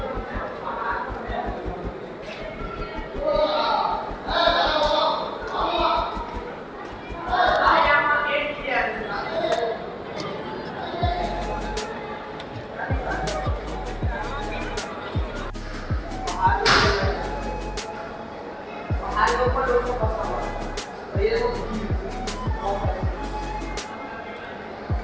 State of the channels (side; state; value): both; identical; correlation 1.00